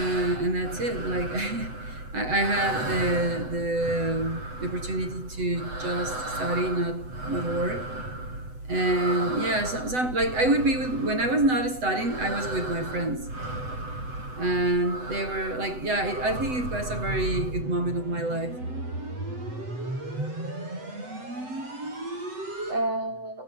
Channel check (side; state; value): left; late; 8.0 ms